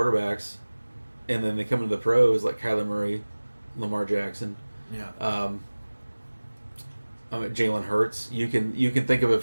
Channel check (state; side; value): inverted; both; correlation -1.00